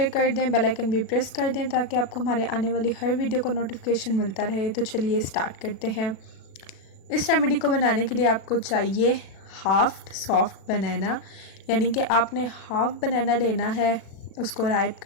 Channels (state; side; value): late; right; 37 ms